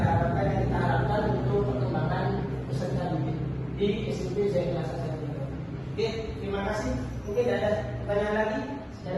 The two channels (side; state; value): both; identical; correlation 1.00